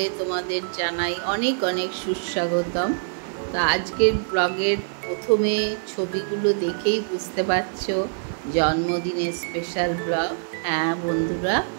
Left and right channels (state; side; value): silent; left; digital silence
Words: তোমাদের জানাই অনেক অনেক সুস্বাগতম। তো আজকের ব্লগের প্রথমে ছবিগুলো দেখেই বুঝতে পারছো জন্মদিনের স্পেশাল ব্লগ। হ্যাঁ বন্ধুরা,